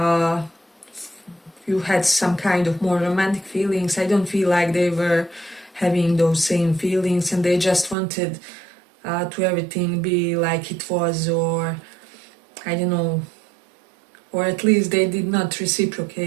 some kind of more romantic feelings, I don't feel like they were having those same feelings, and they just wanted to everything be like it was, or I don't know, or at least they did not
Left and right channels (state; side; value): drops out; left; at 8.0 s